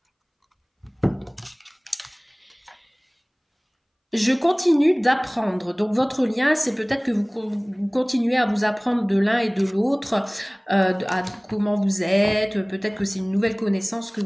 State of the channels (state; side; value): identical; both; correlation 1.00